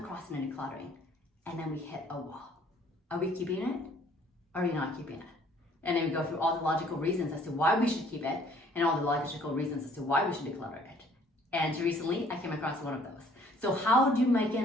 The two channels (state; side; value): normal; both; correlation 0.58